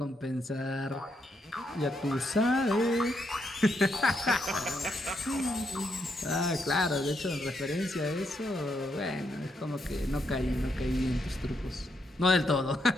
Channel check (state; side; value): normal; both; correlation 0.78